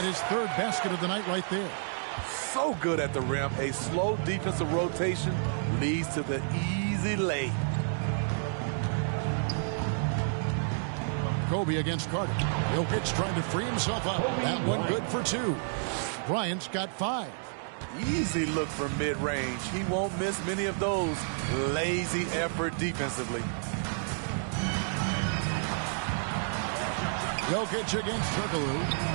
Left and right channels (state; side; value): silent; left; digital silence